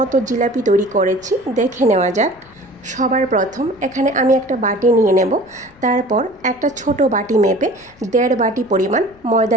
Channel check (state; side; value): noise; left; rumble, 29 dB below the sound